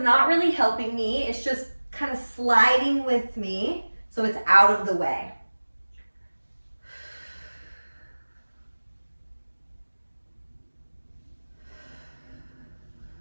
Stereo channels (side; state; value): both; inverted; correlation -1.00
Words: not really helping me. It's just kind of sliding with me, so it's out of the way.